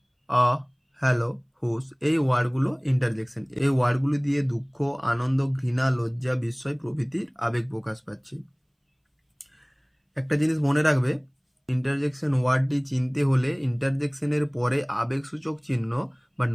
হ্যালো, হুস, এই ওয়ার্ডগুলো ইন্টারজেকশন। এই ওয়ার্ডগুলি দিয়ে দুঃখ, আনন্দ, ঘৃণা, লজ্জা, বিস্ময় প্রভৃতির আবেগ প্রকাশ পাচ্ছে। একটা জিনিস মনে রাখবে, ইন্টারজেকশন ওয়ার্ডটি চিনতে হলে ইন্টারজেকশনের পরে আবেগসূচক চিহ্ন বা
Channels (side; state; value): both; identical; correlation 1.00